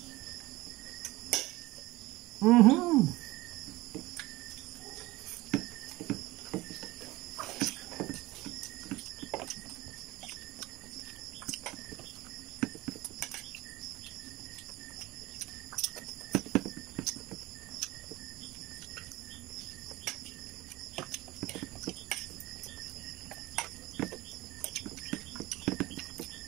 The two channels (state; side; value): quieter; left; 19.6 dB